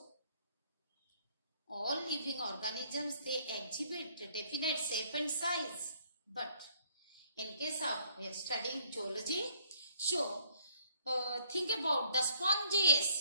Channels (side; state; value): both; inverted; correlation -0.62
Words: all living organisms, they exhibit a definite shape and size. But in case of we are studying zoology, so think about the